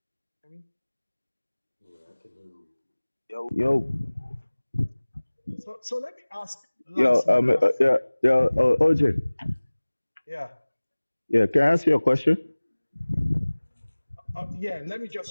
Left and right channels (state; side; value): inverted; both; correlation -1.00